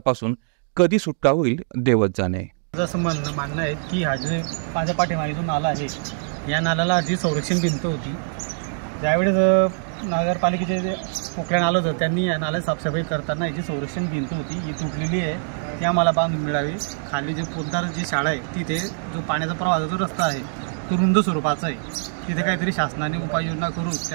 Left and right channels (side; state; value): left; silent; digital silence